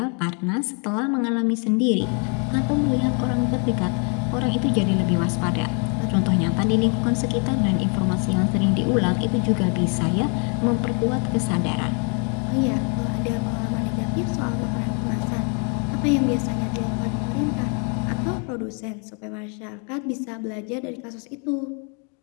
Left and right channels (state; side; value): quieter; right; 38.4 dB